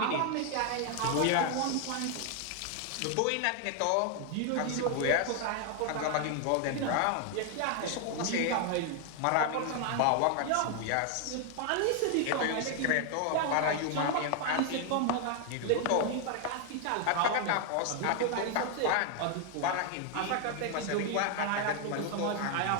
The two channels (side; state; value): both; different; correlation 0.00